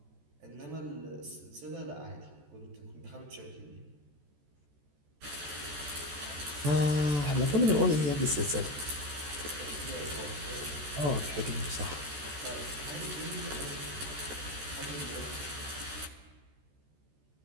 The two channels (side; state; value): left; late; 14 ms